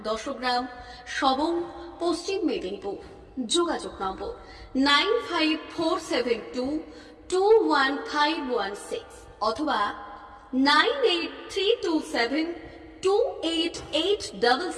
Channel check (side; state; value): both; identical; correlation 1.00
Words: 10 গ্রাম, সবং, পশ্চিম মেদিনীপুর। যোগাযোগ নম্বর 9547221516 অথবা